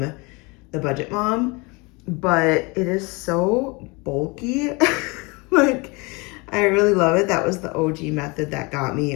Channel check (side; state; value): right; quieter; 27.5 dB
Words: the Budget Mom, but it is so bulky. Like, I really love it. That was the OG method that got